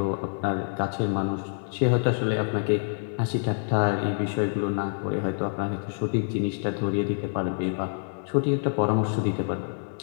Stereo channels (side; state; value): right; silent; 60 dB below the other